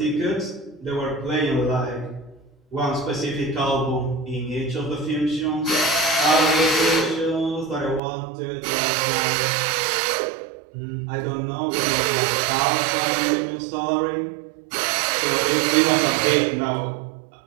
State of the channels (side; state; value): left; drops out; at 8.0 s